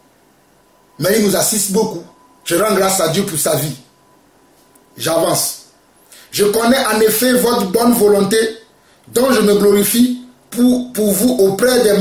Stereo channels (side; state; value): both; identical; correlation 1.00